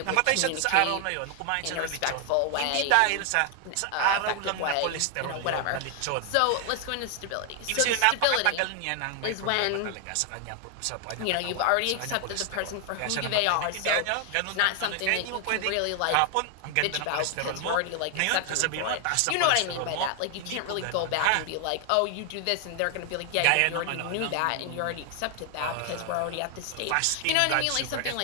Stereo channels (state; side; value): different; both; correlation 0.00